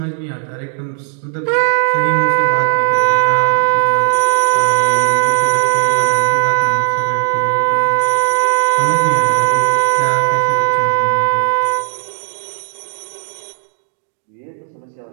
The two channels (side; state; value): left; silent; 68 dB below the other